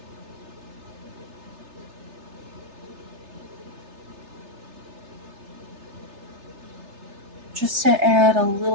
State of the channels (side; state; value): left; late; 3.3 ms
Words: Just to add a